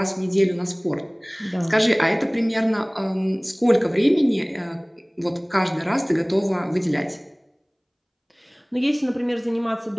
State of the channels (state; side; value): identical; both; correlation 1.00